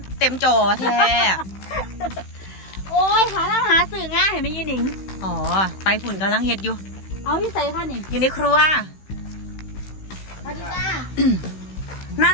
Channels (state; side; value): late; right; 16 ms